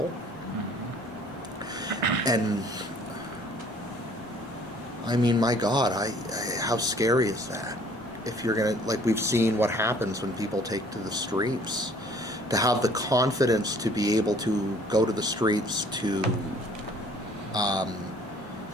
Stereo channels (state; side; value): normal; both; correlation 0.56